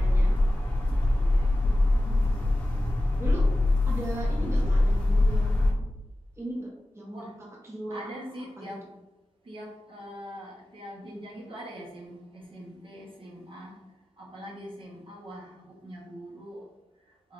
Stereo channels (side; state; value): both; normal; correlation 0.96